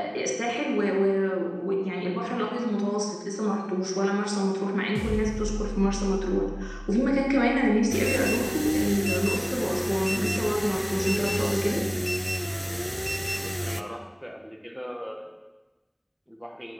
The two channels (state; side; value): identical; both; correlation 1.00